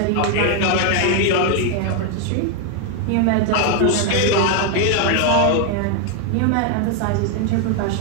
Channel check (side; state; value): both; different; correlation 0.01